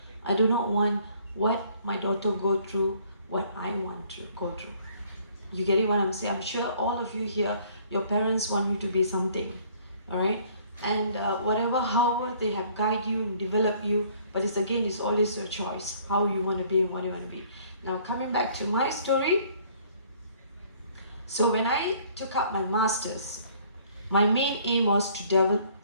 I do not want what my daughter go through, what I want to go through. You get it what I'm saying? I'm sure all of you here, your parents want you to be something, all right? And however they have guided you and developed you, but it's always your choice, how you want to be and what you want to be. Now, coming back to my story. So when I took up my master's, my main aim was to develop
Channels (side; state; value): both; inverted; correlation -0.59